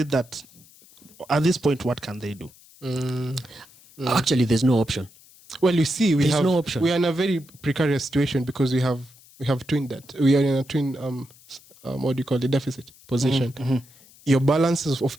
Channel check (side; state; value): left; noise; hiss, 25 dB below the sound